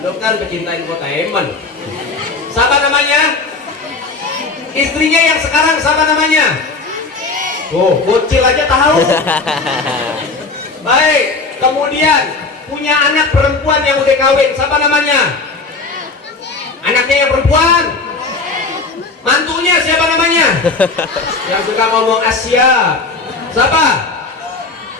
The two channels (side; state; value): right; quieter; 3.9 dB